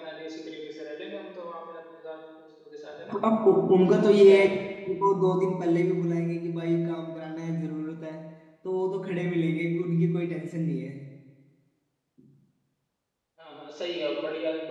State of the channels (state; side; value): identical; both; correlation 1.00